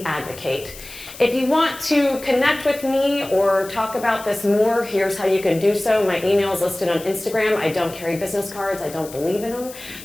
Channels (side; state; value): left; noise; hiss, 16 dB below the sound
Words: advocate. If you want to connect with me or talk about this more, here's how you can do so. My email is listed on Instagram. I don't carry business cards. I don't believe in them,